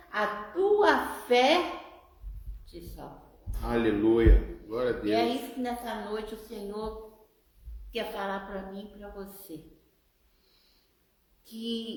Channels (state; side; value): identical; both; correlation 1.00